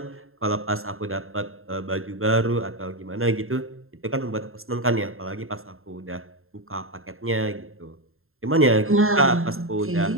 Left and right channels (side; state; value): left; late; 0.61 ms